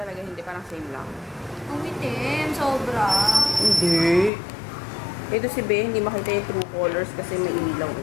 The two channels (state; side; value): drops out; right; at 4.3 s